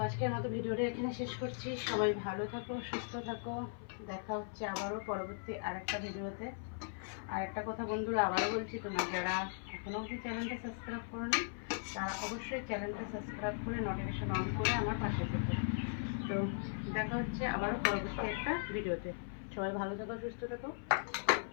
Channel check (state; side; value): silent; right; 52 dB below the other